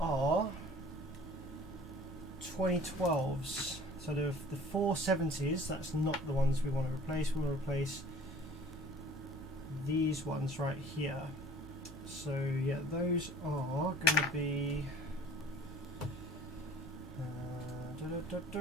2012s. So the 470s, that's not the ones we want to replace. We want to replace these ones right here. So yeah, those are going to be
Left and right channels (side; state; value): both; normal; correlation 0.48